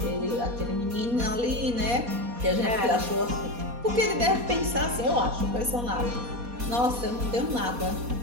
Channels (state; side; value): late; left; 4.2 ms